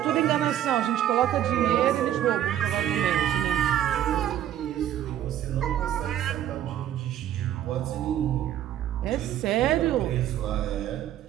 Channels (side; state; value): left; quieter; 11.4 dB